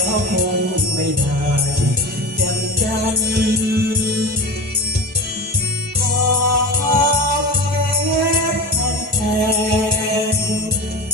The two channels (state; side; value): normal; both; correlation 0.29